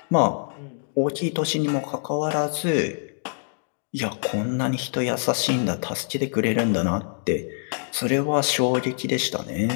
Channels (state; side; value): silent; right; digital silence